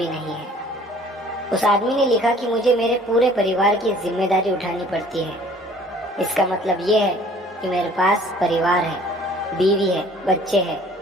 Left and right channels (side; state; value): both; normal; correlation 0.53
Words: नहीं है। उस आदमी ने लिखा कि मुझे मेरे पूरे परिवार की जिम्मेदारी उठानी पड़ती है। इसका मतलब ये है कि मेरे पास परिवार है, बीवी है, बच्चे हैं